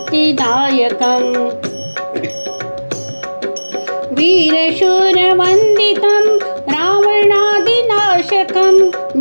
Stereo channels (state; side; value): inverted; both; correlation -1.00